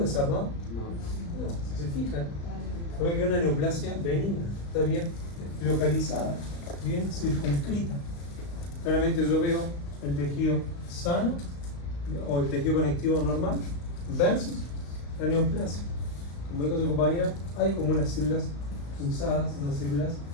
No, si se fijan, ve que es una neoplasia benigna, está bien localizada, bien circunscrita. Claramente yo veo el tejido sano o el tejido conectivo normal versus la neoplasia. Como dijo su compañera, hay como unas células fusadas, unas células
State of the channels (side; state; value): right; late; 35 ms